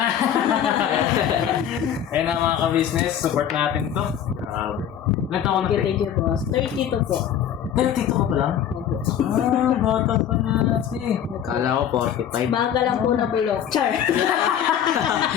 Ayun na mga ka-business, support natin ito. Ilan taon na? Thank you, boss. 32 po. 32 ka pa lang? Bata pa na kasi. Kala ko 45. Baga lang po na bulok. Char.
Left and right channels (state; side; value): quieter; right; 9.5 dB